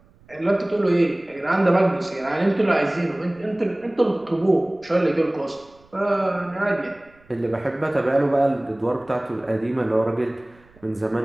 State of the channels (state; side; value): noise; right; rumble, 29 dB below the sound